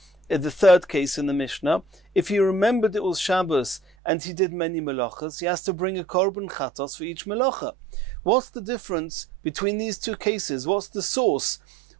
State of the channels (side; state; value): left; drops out; at 3.8 s